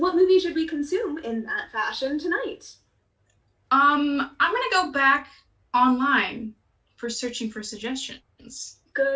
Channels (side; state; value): both; identical; correlation 1.00